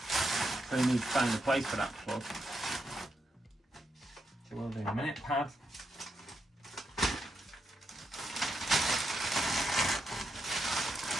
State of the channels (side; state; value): both; normal; correlation 0.82